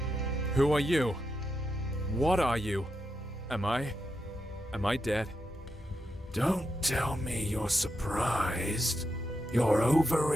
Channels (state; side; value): normal; both; correlation 0.85